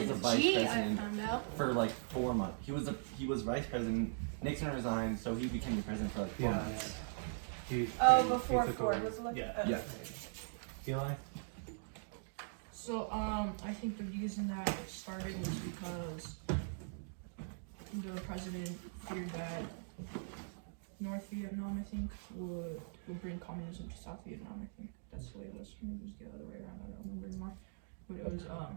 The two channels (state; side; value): silent; left; digital silence